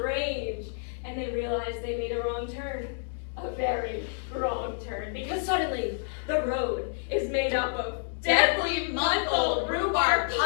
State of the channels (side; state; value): right; silent; digital silence